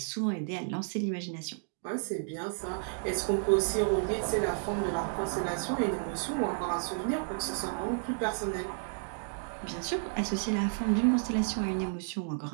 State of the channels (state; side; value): silent; left; digital silence